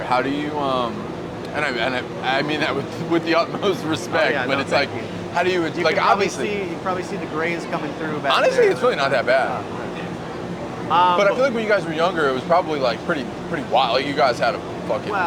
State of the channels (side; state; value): both; identical; correlation 1.00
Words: how do you I mean that with the utmost respect, yeah, but no, it's thank like you. how do you You like can obviously you probably see the grays coming through back honestly there. it's really not that bad. But I feel like when you guys were younger, it was probably like pretty wild. Like you guys had a fucking